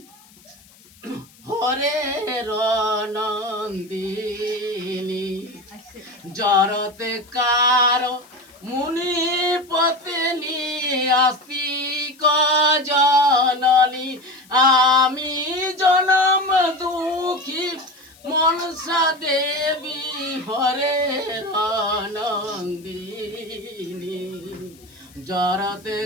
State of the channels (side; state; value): left; noise; hiss, 26 dB below the sound